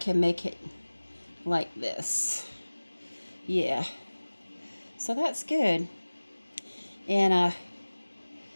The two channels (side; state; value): both; inverted; correlation -1.00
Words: make it like this. Yeah. So that's good. And,